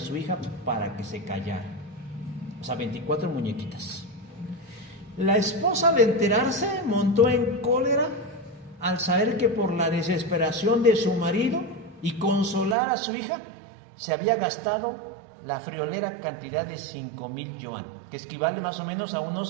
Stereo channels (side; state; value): left; drops out; at 12.8 s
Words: hija para que se callara. O sea, 24 muñequitas. La esposa, al enterarse, montó en cólera al saber que por la desesperación de su marido y consolar a su hija, se había gastado la friolera cantidad de 5,000 yuan, que equivale más o menos a